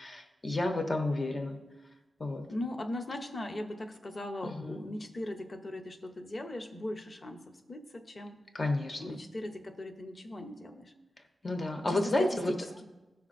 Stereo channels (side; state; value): both; normal; correlation 0.92